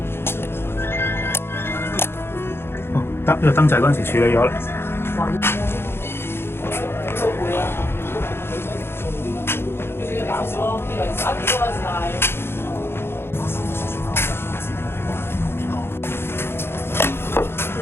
哦，得呢個燈掣嗰陣時處理咗啦。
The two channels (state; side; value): late; right; 0.11 ms